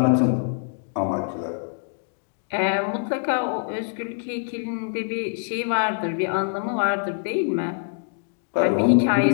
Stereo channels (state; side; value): silent; right; digital silence